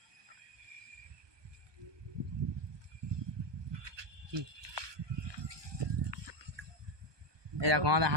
কি এই দেখো আমাদের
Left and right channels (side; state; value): left; late; 1.2 ms